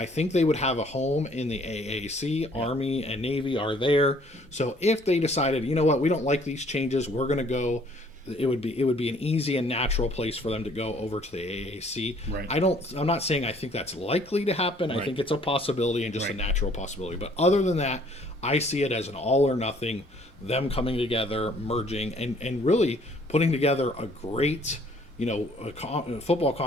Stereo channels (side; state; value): both; normal; correlation 0.59